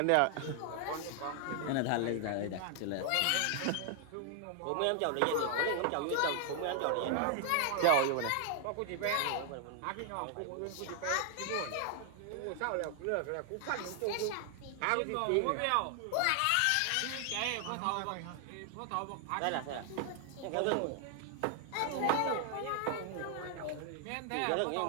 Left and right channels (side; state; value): both; different; correlation 0.00